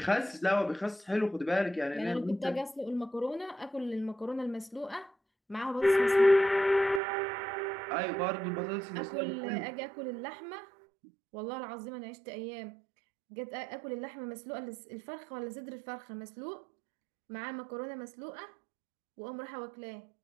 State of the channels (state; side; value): drops out; left; at 7.0 s